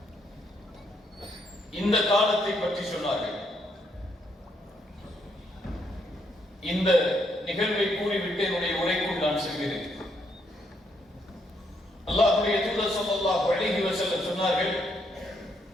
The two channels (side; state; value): both; normal; correlation 0.75